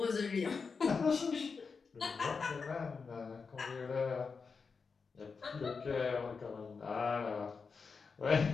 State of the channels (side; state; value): right; quieter; 5.1 dB